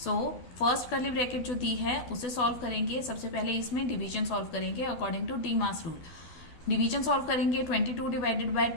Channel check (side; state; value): right; late; 12 ms